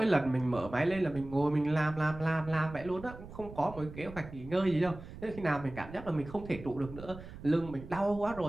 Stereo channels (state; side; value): noise; right; rumble, 14 dB below the sound